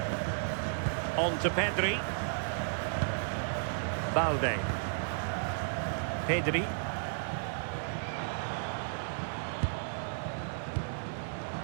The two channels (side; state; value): left; silent; digital silence